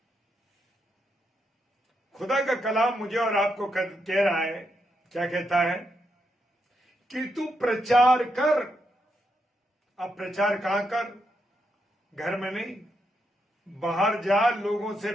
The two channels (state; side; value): normal; both; correlation 0.81